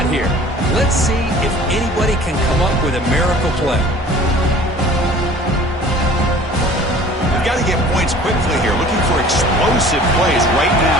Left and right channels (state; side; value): normal; both; correlation 0.47